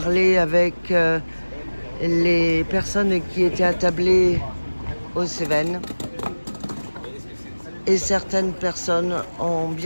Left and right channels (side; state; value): both; inverted; correlation -1.00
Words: avec les personnes qui étaient attablées aux Cévennes. Et certaines personnes ont